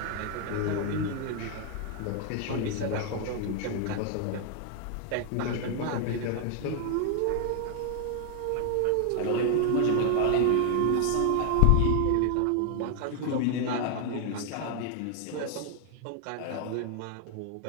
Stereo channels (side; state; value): both; different; correlation 0.00